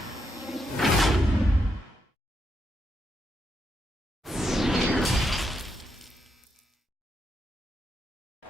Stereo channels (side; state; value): both; normal; correlation 0.81